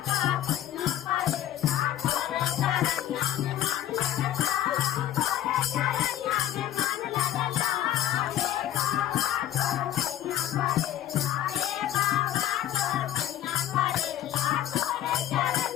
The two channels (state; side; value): quieter; right; 12.1 dB